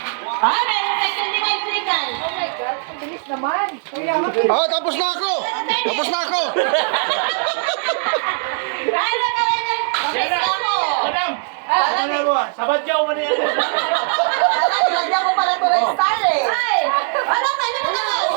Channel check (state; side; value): silent; left; 58 dB below the other